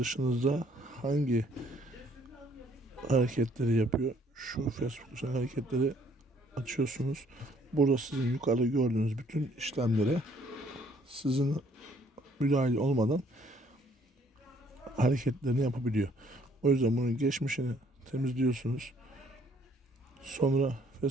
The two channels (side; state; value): both; normal; correlation 0.63